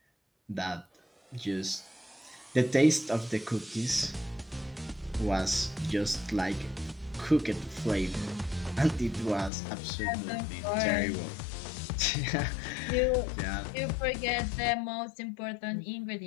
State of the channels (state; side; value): drops out; right; at 9.5 s